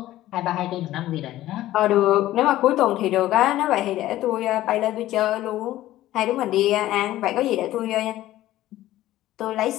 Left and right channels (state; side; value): quieter; right; 14.8 dB